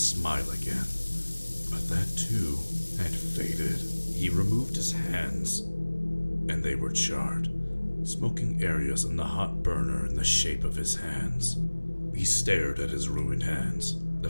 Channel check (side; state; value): both; inverted; correlation -1.00